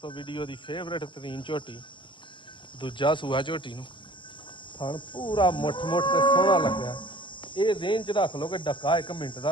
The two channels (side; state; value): right; late; 0.24 ms